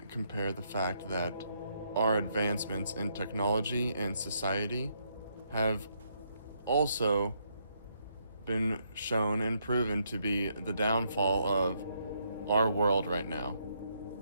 compare the fact that our advancements in technology and society have also been shown and proven to be the downfall of our world right now.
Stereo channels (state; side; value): inverted; both; correlation -0.75